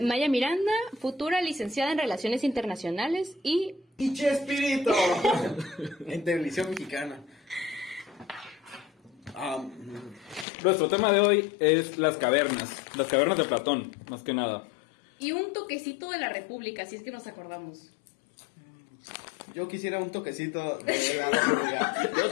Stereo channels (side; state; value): right; drops out; at 10.5 s